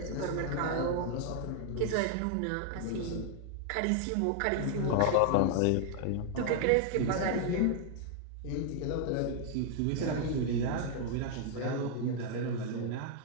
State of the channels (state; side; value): different; both; correlation 0.00